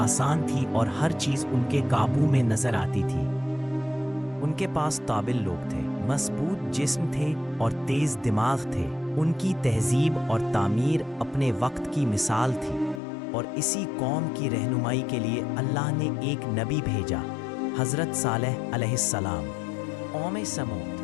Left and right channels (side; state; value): right; drops out; at 13.0 s